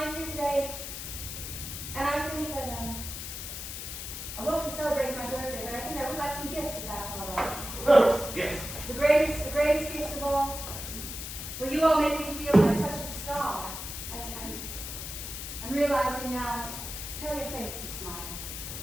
here today, and I think that, I won't be celebrating my birthday, but I think I would like some gifts if that's all right. Yes. The greatest gifts of all. Well, you all make me feel like such a star. And I'm realizing now, tell your face to smile.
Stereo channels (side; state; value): left; noise; hiss, 7 dB below the sound